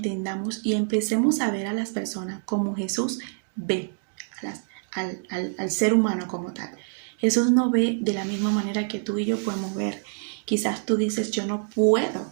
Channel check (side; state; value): left; silent; digital silence